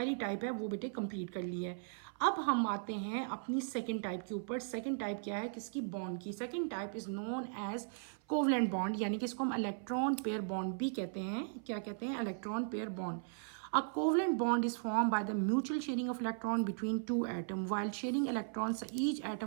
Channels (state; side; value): silent; left; 53 dB below the other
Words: टाइप है वो बेटे कंप्लीट कर ली है। अब हम आते हैं अपनी सेकंड टाइप के ऊपर। सेकंड टाइप क्या है, किसकी, बॉन्ड की। Second type is known as covalent bond, यानी कि इसको हम इलेक्ट्रॉन पेयर बॉन्ड भी कहते हैं। क्या कहते हैं, electron pair bond. A covalent bond is formed by the mutual sharing of electron between two atoms. While sharing electrons, each